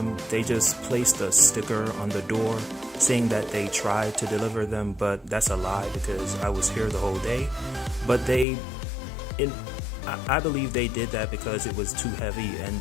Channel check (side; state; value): right; drops out; at 8.5 s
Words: They just placed a sticker on the door saying that they tried to deliver them, but that's a lie because I was here the whole day. But I believe they did that because it was too heavy